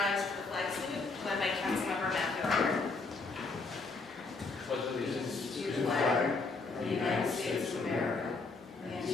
for the flag salute led by Councilmember Matthew Arthur. Pledge allegiance to the flag of the United States of America and to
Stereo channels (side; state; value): right; quieter; 3.9 dB